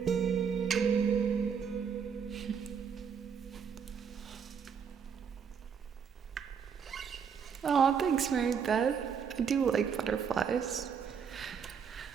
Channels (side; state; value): left; quieter; 6.9 dB